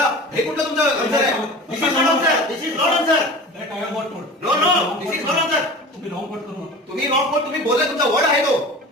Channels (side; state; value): both; normal; correlation 0.37